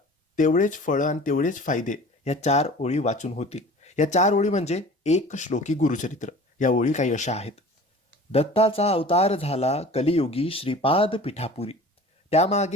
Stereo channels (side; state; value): both; normal; correlation 0.42